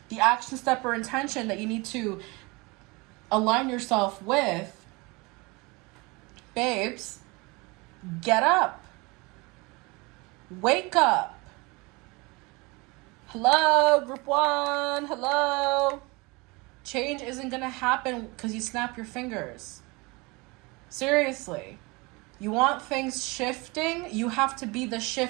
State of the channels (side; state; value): left; quieter; 25.6 dB